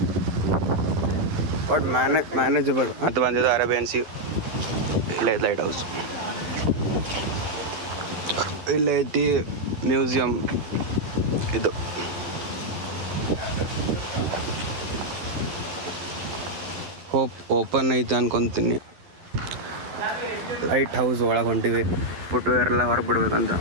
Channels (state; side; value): late; left; 11 ms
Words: ಬಟ್ ಮ್ಯಾನೇಜಬಲ್ ಅಂತ ಬಂದಿದ್ದು ಅರೇಬಿಯನ್ ಸಿ. ಇಲ್ಲೇ ಲೈಟ್ ಹೌಸ್, ಇಲ್ಲೇ ಐತಿ ಮ್ಯೂಸಿಯಂ. ಇದು ಹೋಪ್ ಓಪನ್ ಐತೆ ಅನ್ಕೊತೀನಿ. ಲೈಟ್ ಹೌಸ್ ಒಳಗೆ ಹೊಂಟಿವಿ. ಫುಟ್ವೇರ್ ಎಲ್ಲ ಹೊರಗೆ ಬಿಡ್ಬೇಕಂತ.